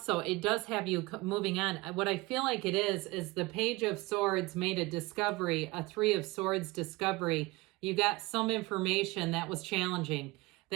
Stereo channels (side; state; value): left; quieter; 22.0 dB